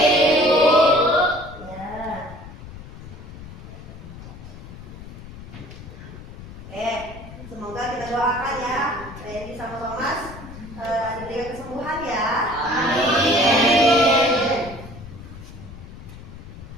Bu. Ya. Oke, semoga kita doakan ya Reni sama Thomas diberikan kesembuhan ya. Amin.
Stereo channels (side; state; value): left; noise; rumble, 14 dB below the sound